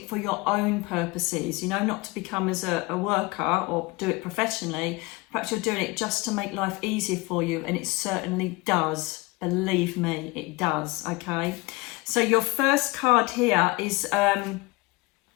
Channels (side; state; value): right; quieter; 23.3 dB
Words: for your own purposes, you know, not to become as a worker or do it professionally. Perhaps you're doing it just to make life easier for you, and it certainly does. Believe me, it does, okay? So your first card here is